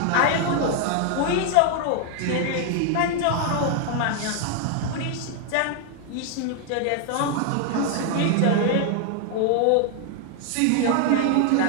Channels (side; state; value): both; different; correlation 0.00